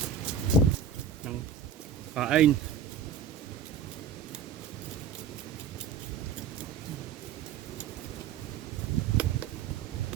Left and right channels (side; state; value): left; quieter; 6.6 dB